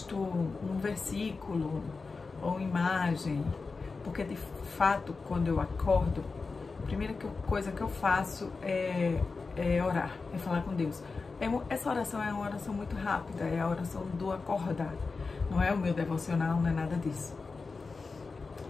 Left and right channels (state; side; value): quieter; right; 4.3 dB